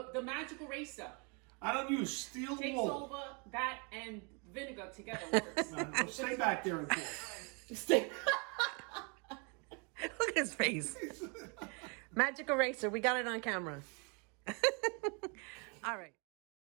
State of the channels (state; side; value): quieter; left; 34.0 dB